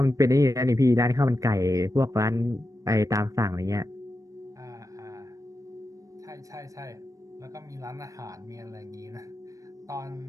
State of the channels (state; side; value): late; left; 0.16 ms